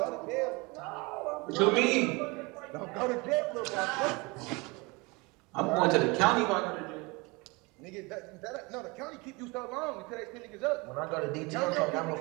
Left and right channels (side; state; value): left; quieter; 26.4 dB